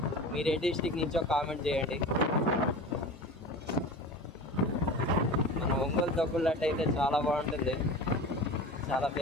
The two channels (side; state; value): both; normal; correlation 0.34